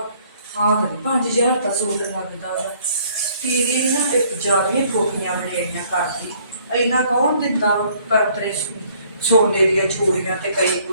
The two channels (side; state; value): both; inverted; correlation -0.61